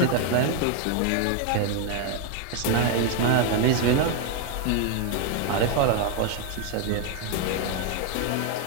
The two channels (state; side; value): different; both; correlation 0.01